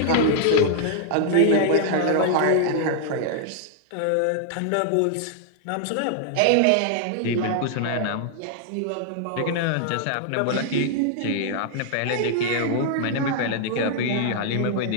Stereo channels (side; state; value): both; different; correlation -0.01